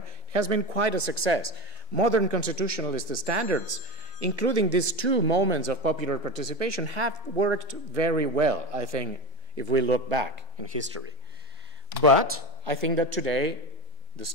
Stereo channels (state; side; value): normal; both; correlation 0.19